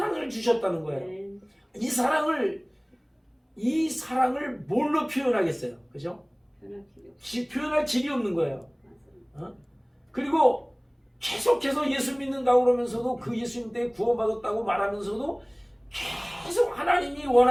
주셨다는 거예요. 이 사랑을 뭘로 표현하겠어요? 그죠? 표현할 길이 없는 거예요. 그리고 계속해서 예수 믿는다고 그러면서도 그 예수님 때문에 구원받았다고 말하면서도 계속 하나님이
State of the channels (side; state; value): both; identical; correlation 1.00